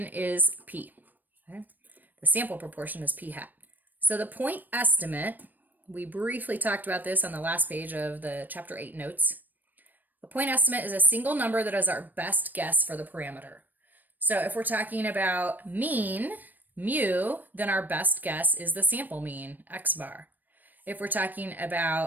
is P. Okay? The sample proportion is P hat. So the point estimate, we briefly talked about this on the last page of the chapter 8 notes. A point estimate is a single number that is our best guess for the parameter. So if we're talking about mean, mu, then our best guess is the sample mean, x bar. If we're talking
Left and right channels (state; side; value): late; left; 0.088 ms